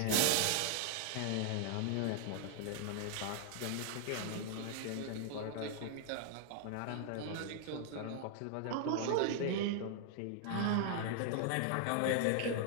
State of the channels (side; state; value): both; different; correlation -0.01